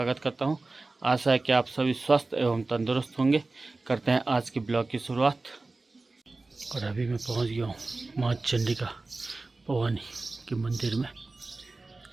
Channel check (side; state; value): left; quieter; 3.4 dB